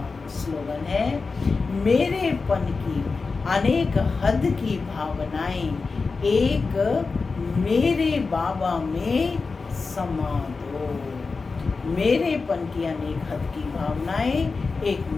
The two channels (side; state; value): right; quieter; 4.3 dB